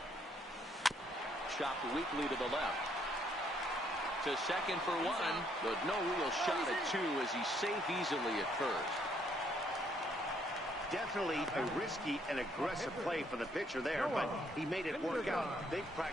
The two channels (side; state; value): both; normal; correlation 0.69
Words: Chopped weakly to the left. To second for one, but no real shot at two as he's safe easily at first. Definitely a risky and aggressive play for the pitcher there, but he made it work out. They've